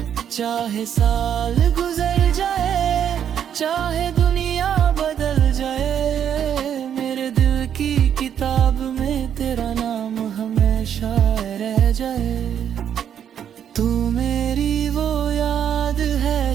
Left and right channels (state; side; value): quieter; left; 9.0 dB